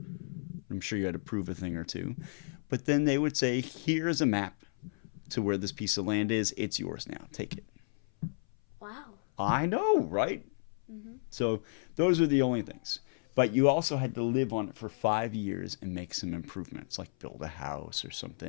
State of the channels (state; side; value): silent; right; 56 dB below the other